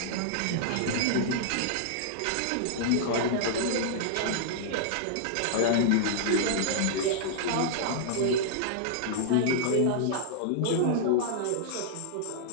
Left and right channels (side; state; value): both; different; correlation -0.01